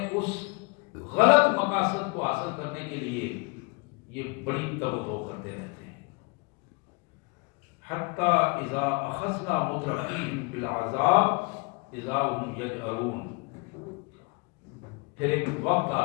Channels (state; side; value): quieter; right; 29.4 dB